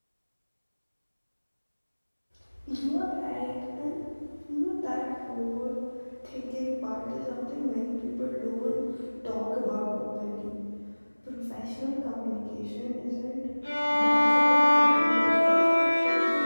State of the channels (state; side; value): inverted; both; correlation -1.00